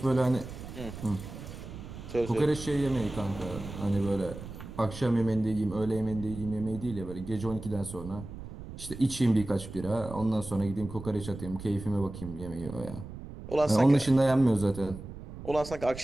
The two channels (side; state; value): right; noise; rumble, 12 dB below the sound